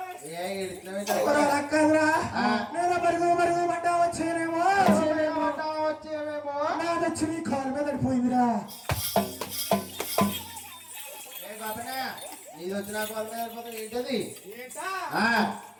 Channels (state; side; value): identical; both; correlation 1.00